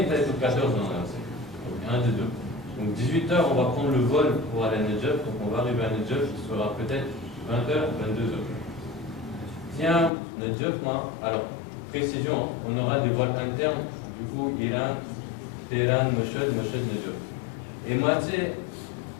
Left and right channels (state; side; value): drops out; right; at 10.1 s